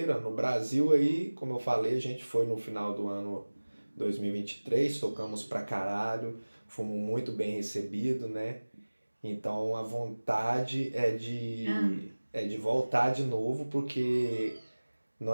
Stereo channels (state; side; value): inverted; both; correlation -1.00